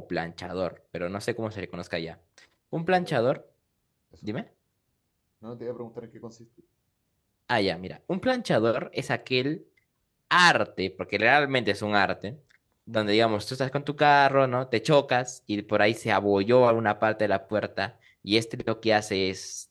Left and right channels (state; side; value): identical; both; correlation 1.00